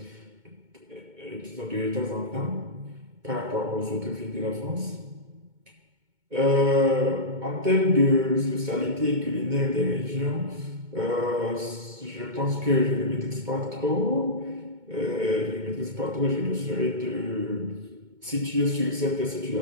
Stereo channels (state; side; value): late; left; 2.2 ms